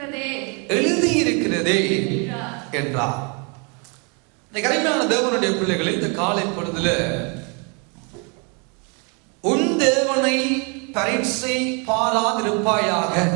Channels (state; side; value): quieter; left; 34.2 dB